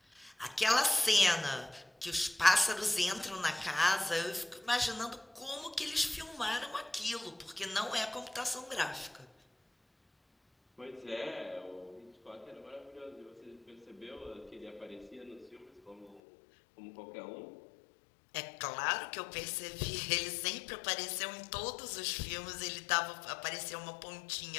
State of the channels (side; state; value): right; drops out; at 16.2 s